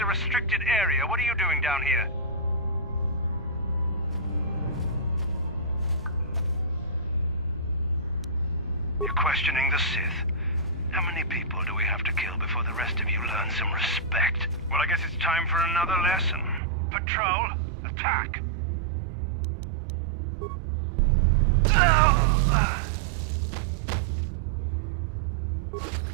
a restricted area. What are you doing down here? You're questioning the Sith. How many people do we have to kill before the rest of you learn some respect? Well, I guess it's time for another lesson. Patrol, attack!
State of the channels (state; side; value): drops out; left; at 16.6 s